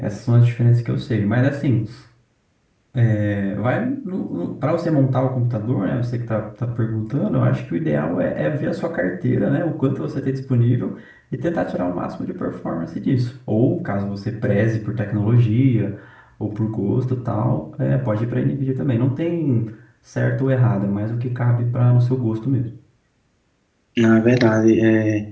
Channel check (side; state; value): both; identical; correlation 1.00